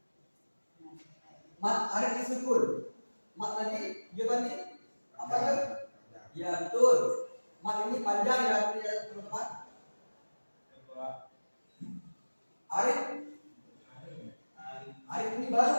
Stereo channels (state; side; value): inverted; both; correlation -1.00